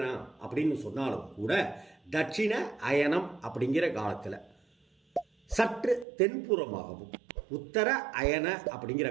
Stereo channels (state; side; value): drops out; left; at 6.1 s